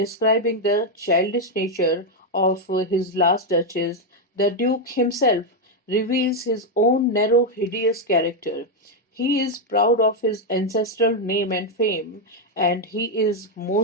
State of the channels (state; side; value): normal; both; correlation 0.02